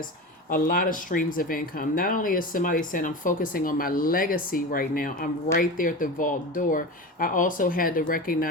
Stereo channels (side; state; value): both; normal; correlation 0.27